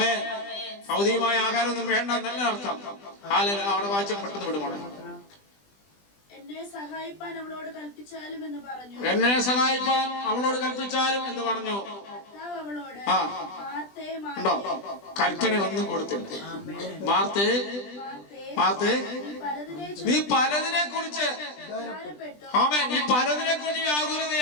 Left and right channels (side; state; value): right; late; 20 ms